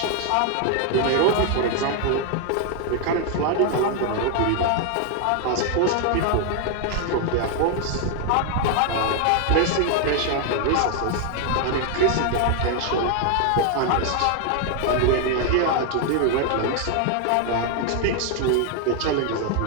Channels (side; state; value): both; different; correlation 0.00